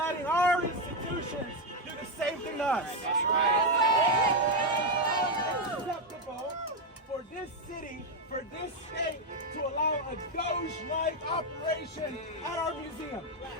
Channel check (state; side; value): normal; both; correlation 0.05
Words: our institutions do the same thing to us? That's right. It's unacceptable for this city, for this state, to allow a Doge-like operation at our museum.